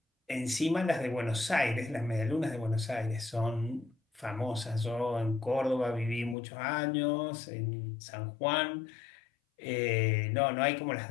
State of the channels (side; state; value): right; drops out; at 6.4 s